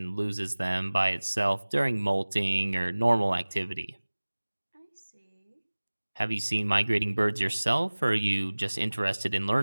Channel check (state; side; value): inverted; both; correlation -1.00